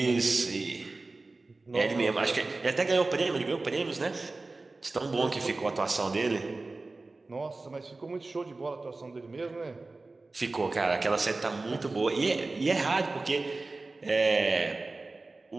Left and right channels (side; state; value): left; quieter; 3.4 dB